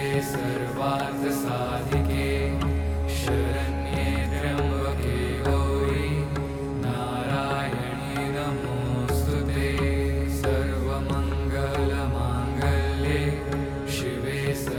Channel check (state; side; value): identical; both; correlation 1.00